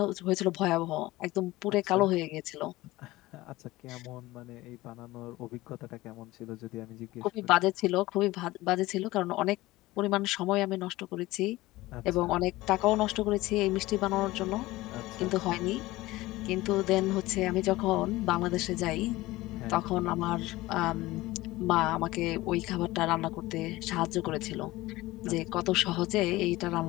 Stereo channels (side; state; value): right; quieter; 18.8 dB